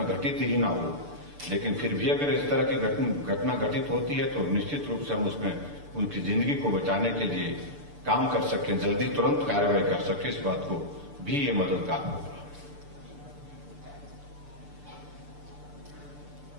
घटित ही ना हो, लेकिन फिर भी अगर इस तरह की घटना घटित होती है तो निश्चित रूप से हम उसमें उनकी जिंदगी को बचाने के लिए काम कर सकें, जल्दी तुरंत कार्रवाई कर सकें, इस बात को भी ये मददगार होगा।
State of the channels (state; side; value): late; left; 6.8 ms